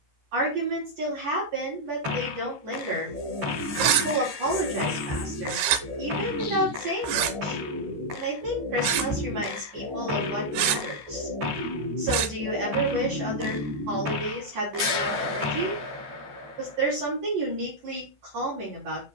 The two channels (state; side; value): late; left; 15 ms